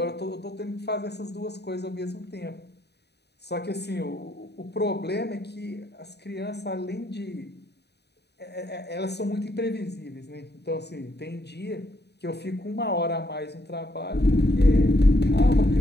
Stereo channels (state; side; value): late; right; 0.48 ms